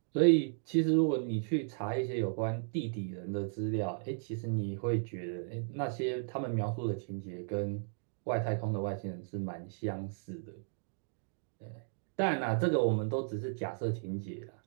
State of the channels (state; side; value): silent; left; digital silence